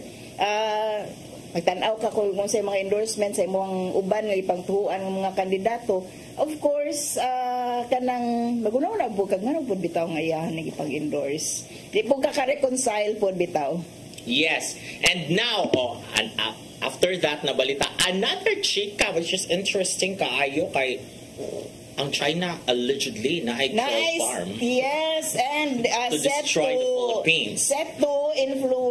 magtanaw ka kung sa mga endorsements sa imong uban nga ipangtuhuan ng mga kandidato. Of course, kanang magunaw na po kag ngano pud bitaw nga iyahan nga ipang-endorse, di po ka-reconcile pud bitaw. Yes, and now after that nabalita another chika which is interesting kaayo kay ang China allegedly na ay farm. Yes, and to destroy the Philippines. Set to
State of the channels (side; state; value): both; identical; correlation 1.00